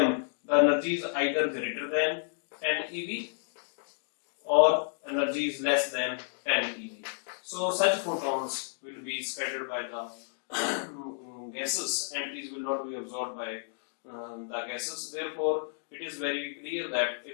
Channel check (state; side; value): silent; right; digital silence